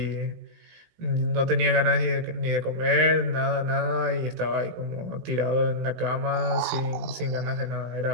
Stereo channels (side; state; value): left; late; 18 ms